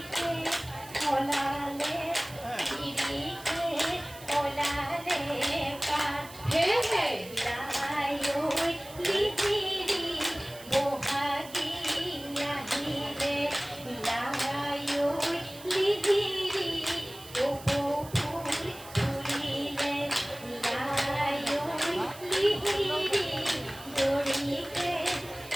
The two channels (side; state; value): right; noise; hiss, 17 dB below the sound